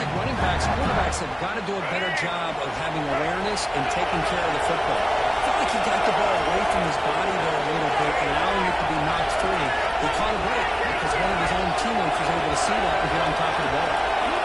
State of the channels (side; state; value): both; identical; correlation 1.00